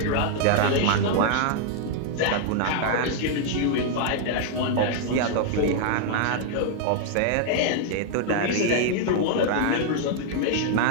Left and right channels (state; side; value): different; both; correlation 0.00